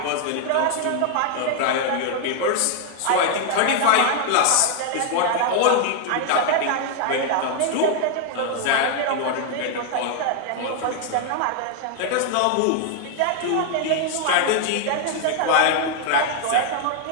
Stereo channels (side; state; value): both; different; correlation 0.00